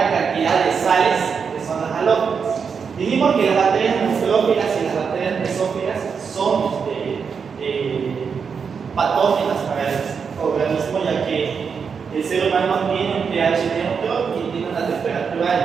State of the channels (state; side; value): quieter; left; 6.1 dB